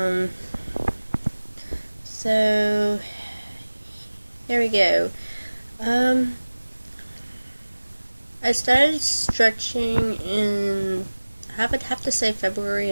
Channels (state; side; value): inverted; both; correlation -1.00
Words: So here we go. I started stretching in, I would have to say, February